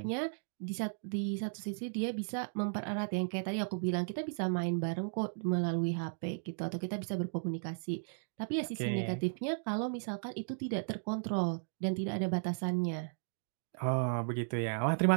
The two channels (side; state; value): left; silent; digital silence